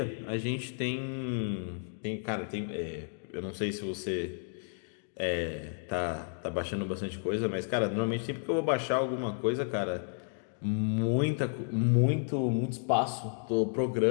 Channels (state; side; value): silent; right; digital silence